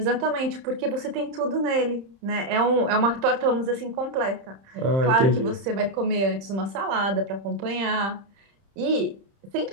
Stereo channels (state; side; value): late; left; 30 ms